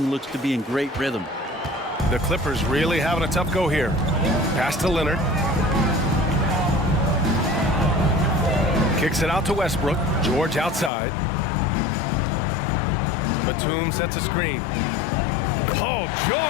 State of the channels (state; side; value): drops out; right; at 10.9 s